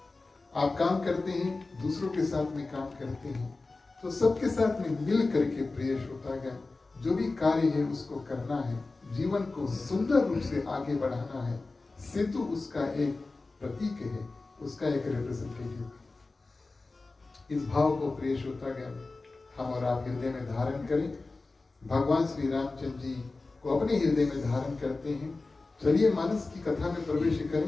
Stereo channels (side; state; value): right; quieter; 3.5 dB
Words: आप काम करते हैं, दूसरों के साथ में काम करते हैं, तो सबके साथ में मिल करके प्रिय श्रोतागण जो भी कार्य है उसको करना है, जीवन को सुंदर रूप से आगे बढ़ाना है। सेतु उसका एक प्रतीक है, उसका एक रिप्रेजेंटेटिव। इस भाव को प्रिय श्रोतागण हम और आप हृदय में धारण करें। भगवान श्री रामचंद्र जी को अपने हृदय में धारण करते हैं। चलिए मानस की कथा में प्रवेश